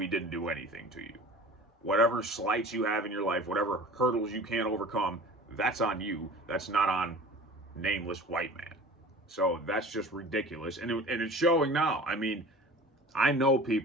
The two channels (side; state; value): both; normal; correlation 0.41